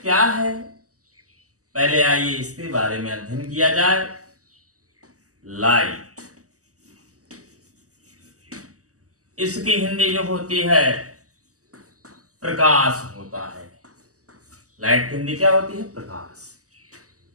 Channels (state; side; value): late; left; 0.66 ms